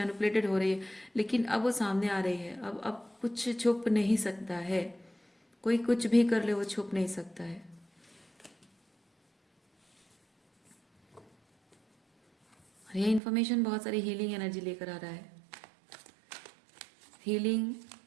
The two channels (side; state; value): left; drops out; at 13.2 s